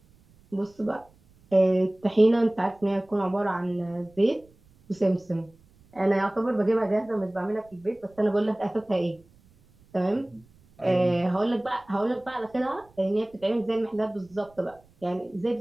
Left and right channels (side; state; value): right; noise; rumble, 30 dB below the sound